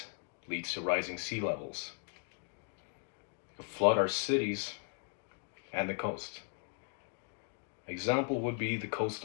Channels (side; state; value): right; quieter; 38.8 dB